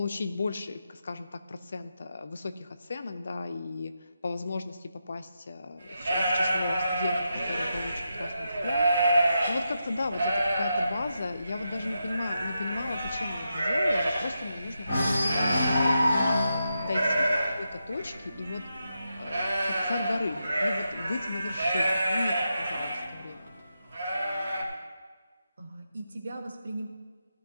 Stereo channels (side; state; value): both; inverted; correlation -0.86